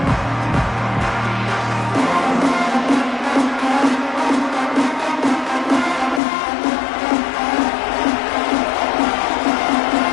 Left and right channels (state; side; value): drops out; right; at 6.2 s